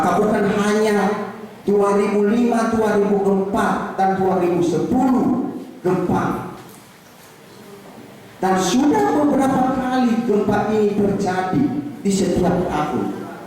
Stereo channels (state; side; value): identical; both; correlation 1.00